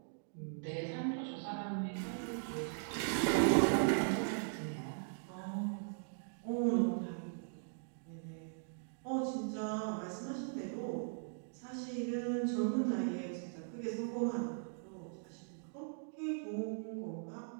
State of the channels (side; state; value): left; silent; digital silence